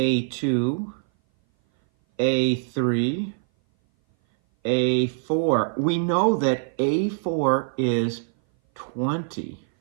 A3, A4. We know that A4 is 20.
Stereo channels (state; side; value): silent; left; 58 dB below the other